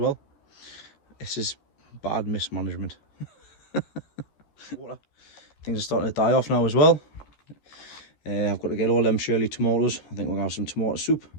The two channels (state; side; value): late; right; 13 ms